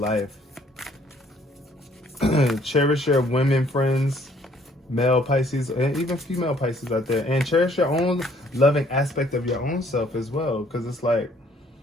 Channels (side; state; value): both; normal; correlation 0.62